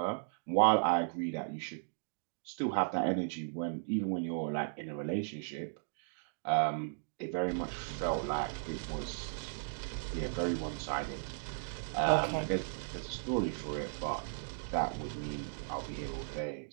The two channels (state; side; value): silent; left; digital silence